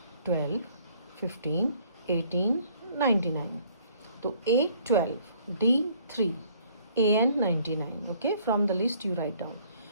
12, 15, 18, 99. So A 12, D 3, AN 99. Okay, from the list you write down.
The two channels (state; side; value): inverted; both; correlation -0.60